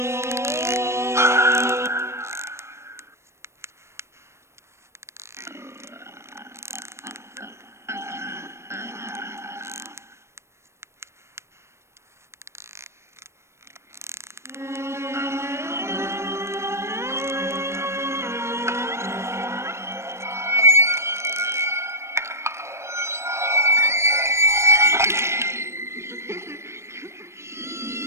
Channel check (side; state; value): left; late; 0.13 ms